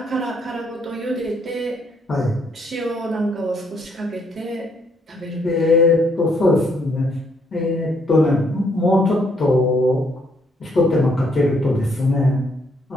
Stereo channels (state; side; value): normal; both; correlation 0.71